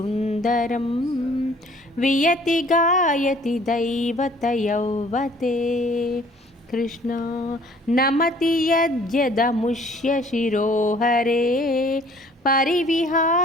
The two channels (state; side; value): normal; both; correlation 0.56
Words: వియతి గాయతి దైవత యౌవతే. కృష్ణ నమతి యద్యదముష్య శిరోహరే